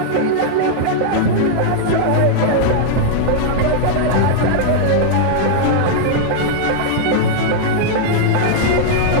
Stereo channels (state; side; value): different; both; correlation -0.01